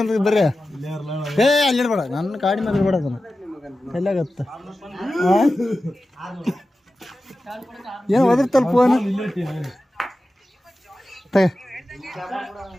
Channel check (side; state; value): both; normal; correlation 0.94